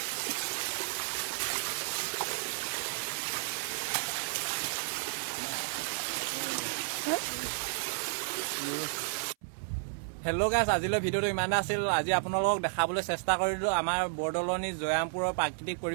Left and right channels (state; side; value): silent; left; 56 dB below the other